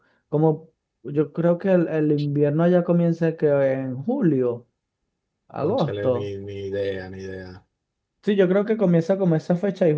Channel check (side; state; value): both; identical; correlation 1.00